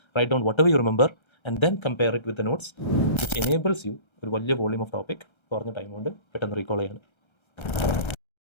write down whatever you remember and then compare it with the notes, which enables you ഒരു വലിയ വോളിയം ഓഫ് ടോപ്പിക് കുറഞ്ഞ ടൈം കൊണ്ട് പെട്ടെന്ന് റീകോൾ ചെയ്യാൻ.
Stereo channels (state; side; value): late; right; 1.3 ms